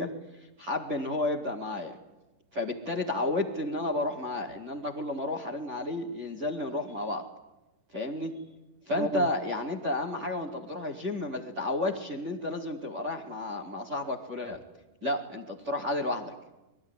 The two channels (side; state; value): left; late; 10 ms